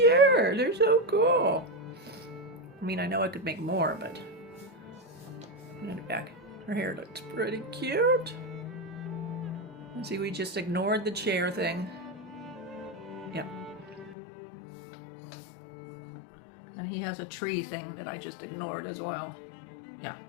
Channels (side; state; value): right; drops out; at 14.2 s